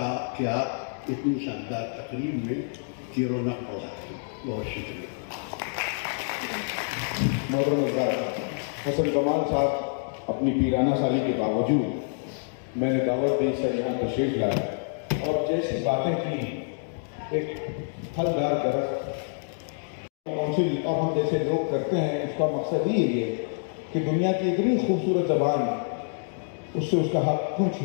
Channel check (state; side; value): silent; right; digital silence